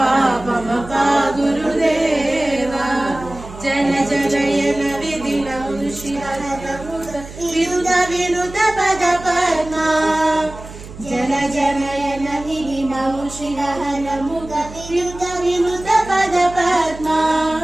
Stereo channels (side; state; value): right; noise; hum, 15 dB below the sound